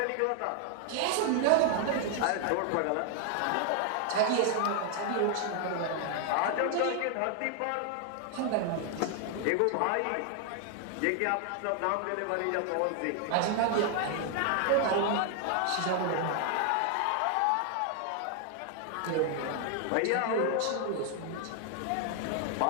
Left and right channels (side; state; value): both; different; correlation 0.00